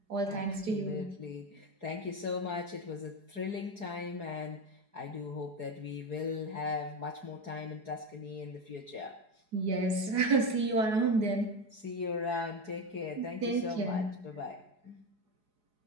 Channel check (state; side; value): late; left; 4.8 ms